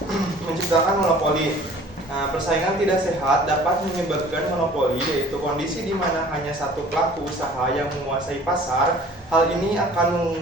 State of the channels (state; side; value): normal; both; correlation 0.49